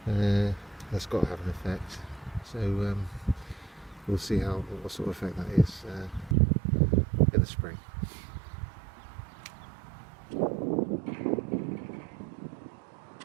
That's got to have an effect. So we'll see what sort of effect that is in the spring.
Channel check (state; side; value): drops out; left; at 6.4 s